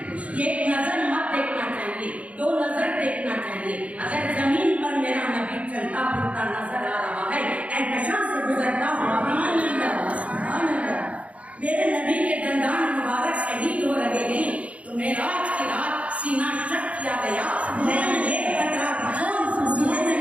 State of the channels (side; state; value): left; late; 0.065 ms